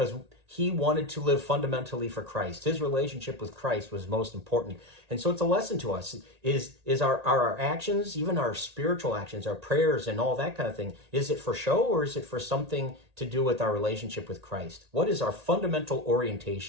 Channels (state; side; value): late; left; 1.8 ms